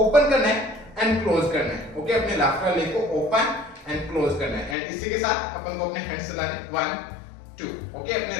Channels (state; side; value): drops out; right; at 4.8 s